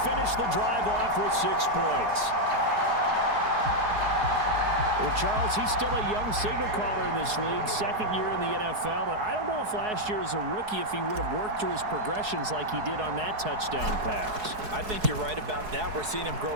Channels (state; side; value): late; left; 4.7 ms